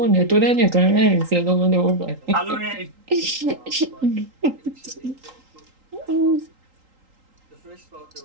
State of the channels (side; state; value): left; late; 3.8 ms